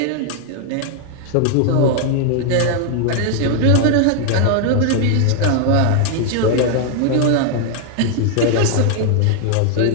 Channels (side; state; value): both; different; correlation 0.00